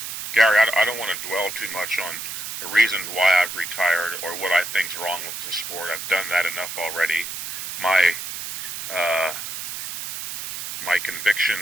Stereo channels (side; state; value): right; noise; hiss, 6 dB below the sound